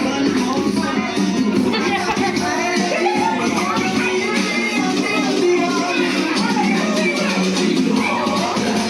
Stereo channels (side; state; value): both; identical; correlation 1.00